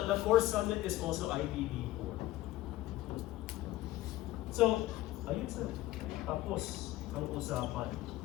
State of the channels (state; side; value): quieter; right; 16.2 dB